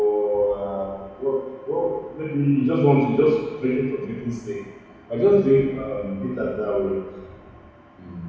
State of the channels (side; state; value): both; identical; correlation 1.00